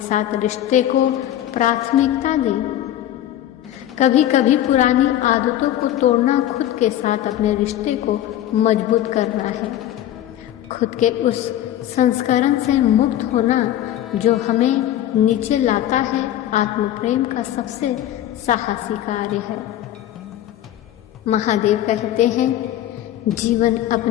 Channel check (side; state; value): right; quieter; 12.4 dB